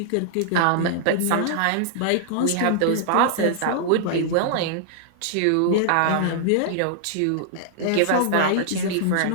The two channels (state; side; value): different; both; correlation -0.01